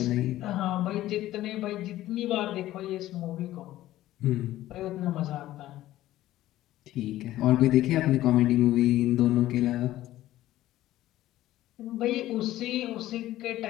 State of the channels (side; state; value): right; quieter; 14.7 dB